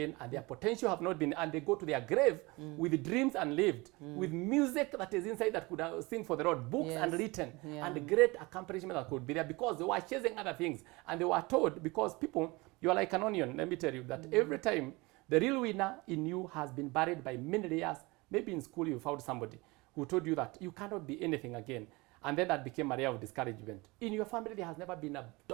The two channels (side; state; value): left; quieter; 24.0 dB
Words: and their potential have not been, and they go to their grave with dreams unlived, with music that is inside that could sing for the Lord, books unwritten, and great accomplishment that could be there, because they were chasing other things. And they were told, because people, you are like an onion, let me tell you, that every time the real winner in you has been buried by many layers. Maybe in school you found somebody who told you that you cannot be anything again. And then that became a layer of discouragement. In your family, there has never been a